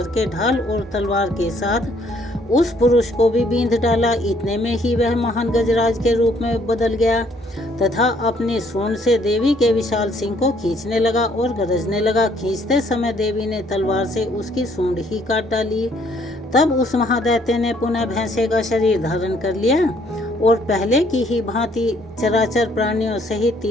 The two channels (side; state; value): both; normal; correlation 0.65